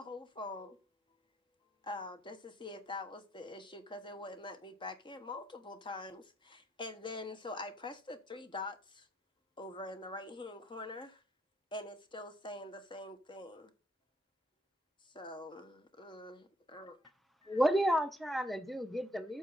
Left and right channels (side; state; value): both; normal; correlation 0.72